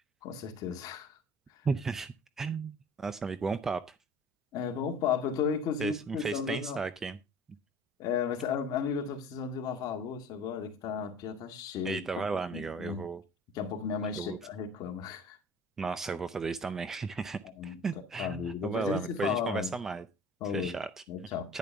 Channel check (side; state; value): both; normal; correlation 0.45